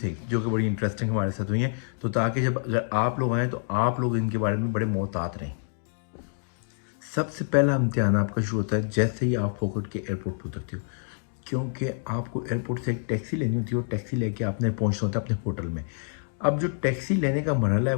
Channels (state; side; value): silent; right; 60 dB below the other